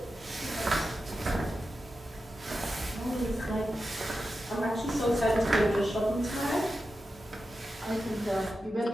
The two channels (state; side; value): normal; both; correlation 0.91